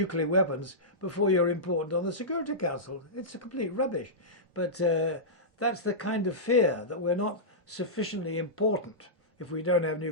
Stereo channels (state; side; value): normal; both; correlation -0.14